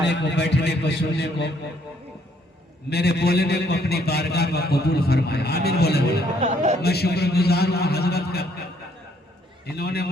को, बैठने को, सुनने को, मेरे बोलने को अपनी बारगाह में कबूल फरमाए। आमीन बोले। मैं शुक्रगुजार हूँ हजरत का, इन्होंने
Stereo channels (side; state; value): both; normal; correlation 0.67